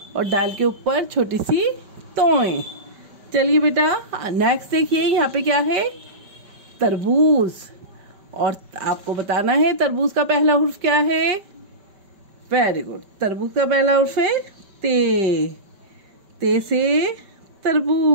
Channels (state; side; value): late; left; 5.2 ms